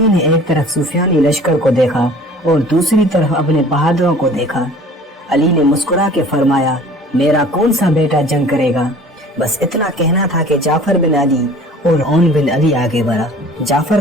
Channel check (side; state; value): both; normal; correlation 0.47